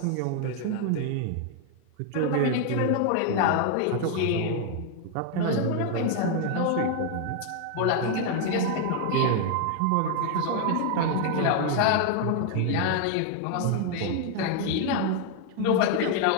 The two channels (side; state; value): both; different; correlation 0.00